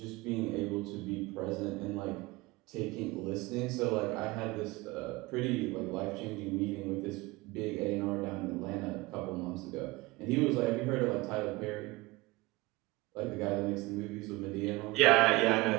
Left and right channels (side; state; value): left; quieter; 21.9 dB